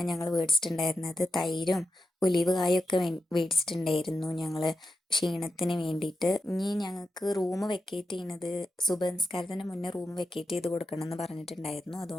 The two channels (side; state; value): both; normal; correlation 0.89